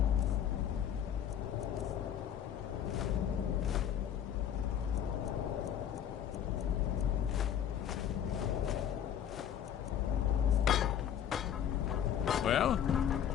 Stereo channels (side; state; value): right; quieter; 9.4 dB